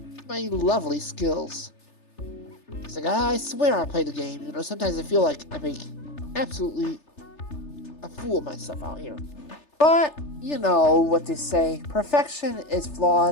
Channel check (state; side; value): late; right; 3.3 ms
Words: my lovely skills. It's like, I swear I play the game. Sometimes I feel like I make absolutely a fool of myself out here. But, you know what they say, perfection is